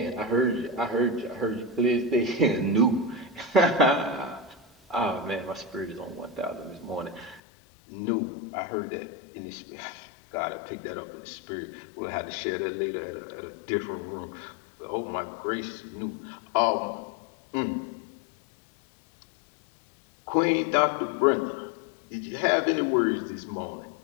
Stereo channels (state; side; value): drops out; right; at 7.4 s